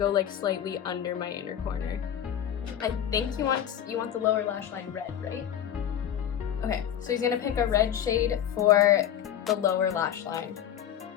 like slightly under my inner corner. I think you want the lower lash line red, right? Okay, so he's gonna pick a red shade for the lower lash line.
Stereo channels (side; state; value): right; quieter; 10.0 dB